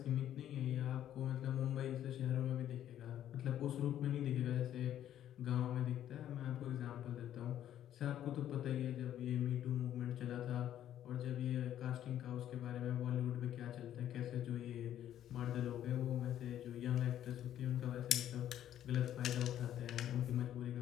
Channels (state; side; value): quieter; right; 11.3 dB